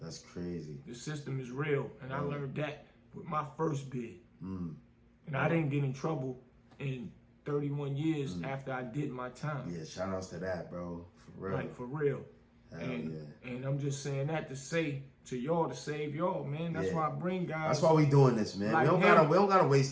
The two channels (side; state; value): both; identical; correlation 1.00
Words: crazy. The system is real. And I learned that with my first bid. And I didn't get in trouble in 31 years after I did my time. Yeah, shout outs to that, bro. For real. Like, for real. And I'm just saying that to say to y'all, to save y'all, man. That's why I bring guys. That's why we doing this, man. Like we don't gotta